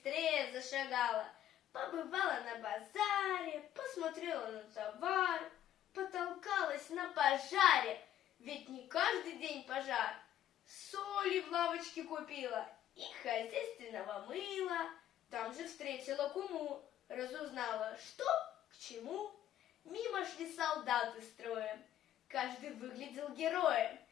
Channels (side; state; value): right; quieter; 11.7 dB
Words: зашагала. Побывала на базаре, посмотрела на товар, потолкалась на пожаре, ведь не каждый день пожар. Соли в лавочке купила и хозяйственного мыла. Там же встретила куму, разузнала, что к чему. Мимо шли солдаты строем, каждый выглядел героем.